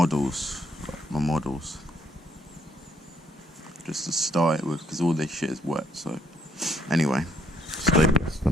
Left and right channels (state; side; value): normal; both; correlation 0.70